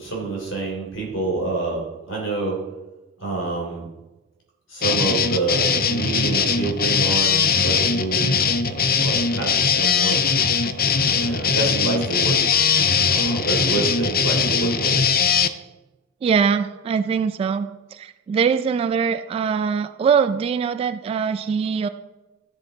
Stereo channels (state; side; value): normal; both; correlation 0.17